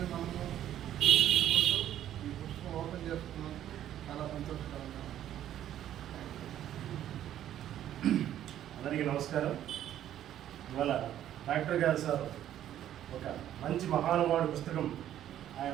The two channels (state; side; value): quieter; left; 11.5 dB